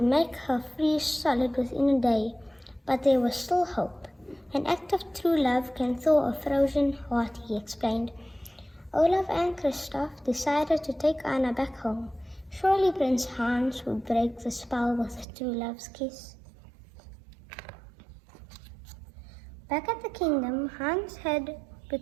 make her freeze solid within a day. But there was still hope. An act of true love can thaw a frozen heart, he explained. Olaf and Christoph decided to take Anna back home. Surely Prince Hans would break the spell with a true love's kiss. Back at the kingdom, Hans had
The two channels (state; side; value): drops out; left; at 15.2 s